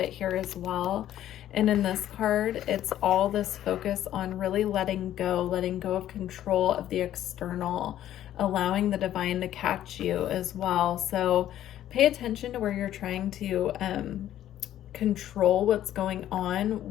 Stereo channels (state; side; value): quieter; right; 12.1 dB